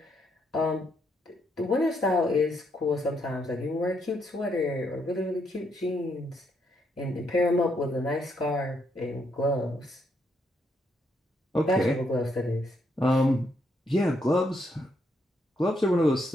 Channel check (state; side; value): normal; both; correlation 0.76